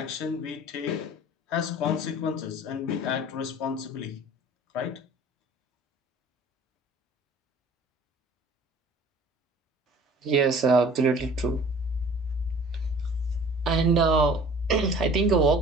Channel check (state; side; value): normal; both; correlation 0.48